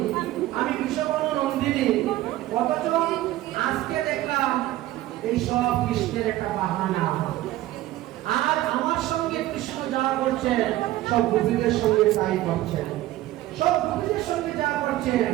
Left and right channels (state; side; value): quieter; left; 15.6 dB